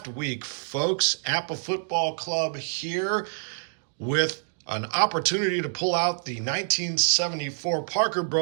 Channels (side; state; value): left; silent; digital silence